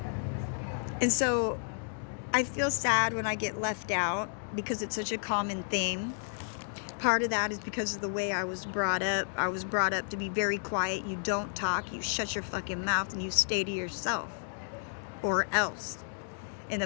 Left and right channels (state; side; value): silent; right; digital silence